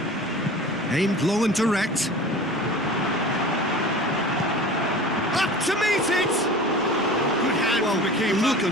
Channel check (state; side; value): normal; both; correlation 0.38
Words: Aimed long and direct. Up to meet it! Good hand from the keeper. The look